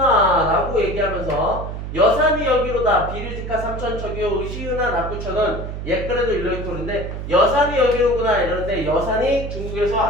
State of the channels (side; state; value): right; noise; hum, 7 dB below the sound